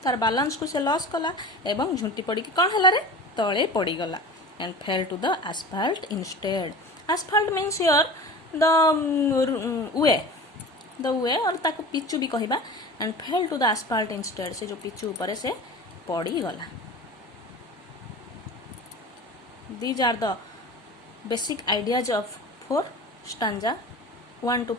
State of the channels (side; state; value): both; normal; correlation 0.35